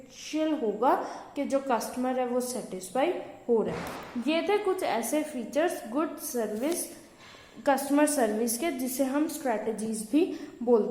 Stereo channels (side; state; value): both; identical; correlation 1.00